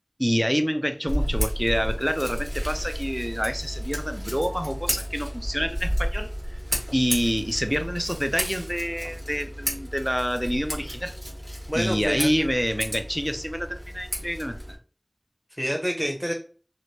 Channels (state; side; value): identical; both; correlation 1.00